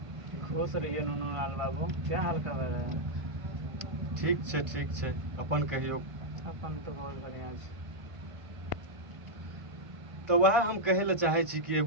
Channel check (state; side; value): late; left; 1.5 ms